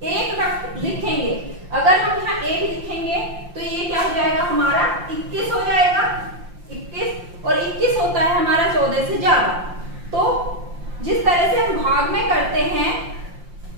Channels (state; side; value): late; left; 5.7 ms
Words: एक लिखेंगे, अगर हम यहाँ एक लिखेंगे तो ये क्या हो जाएगा हमारा 21 हो जाएगा, 21, और 21 होता है हमारा 14 से ज्यादा। तो जिस तरह से हम भाग में करते हैं